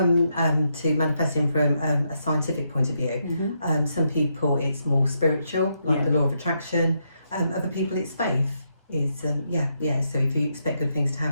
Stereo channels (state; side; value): inverted; both; correlation -0.80